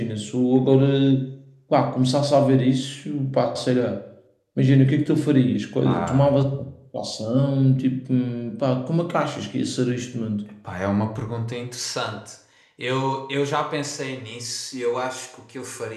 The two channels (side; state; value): both; identical; correlation 1.00